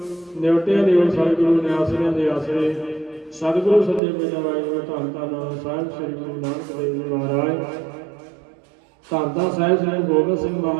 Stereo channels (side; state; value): left; drops out; at 4.0 s